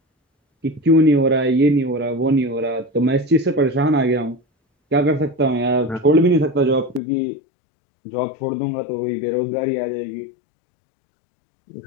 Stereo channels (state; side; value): drops out; right; at 7.0 s